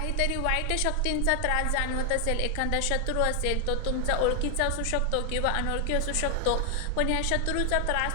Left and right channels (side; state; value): both; different; correlation 0.00